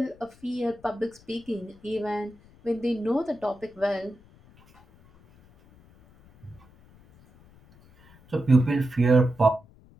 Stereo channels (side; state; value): left; noise; rumble, 26 dB below the sound